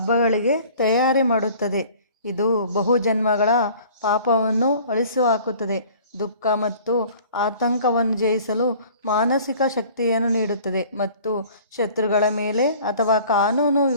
ತಯಾರಿ ಮಾಡುತ್ತದೆ. ಇದು ಬಹುಜನ್ಮಗಳ ಪಾಪವನ್ನು ಅಳಿಸಿಹಾಕುತ್ತದೆ. ದುಃಖ ಮತ್ತು ಆತಂಕವನ್ನು ಜಯಿಸಲು ಮಾನಸಿಕ ಶಕ್ತಿಯನ್ನು ನೀಡುತ್ತದೆ ಮತ್ತು ಶತ್ರುಗಳ ಮೇಲೆ ಅಥವಾ ಕಾನೂನು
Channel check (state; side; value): inverted; both; correlation -0.49